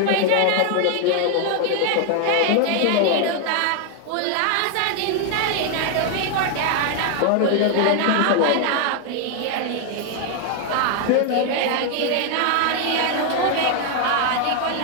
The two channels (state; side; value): different; both; correlation 0.00